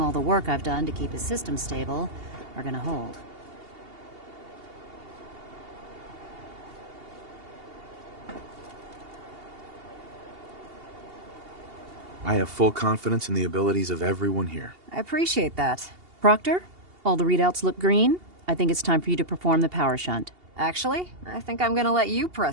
the work I've done to keep his system stable are gonna hold. I have full confidence in the abilities of everyone here. I appreciate that. Proctor, all the readouts look green. I think it's time for you to perform the power shunt. Actually, I think I'm gonna let you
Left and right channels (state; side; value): late; left; 2.8 ms